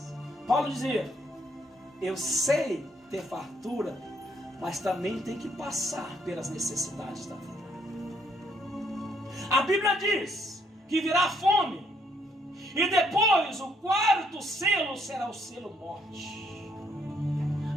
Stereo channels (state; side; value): normal; both; correlation 0.70